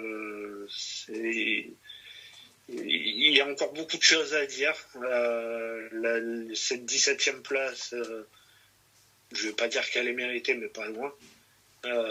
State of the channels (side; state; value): both; identical; correlation 1.00